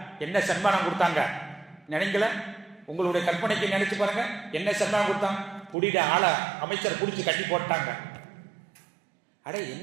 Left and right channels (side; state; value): left; drops out; at 5.8 s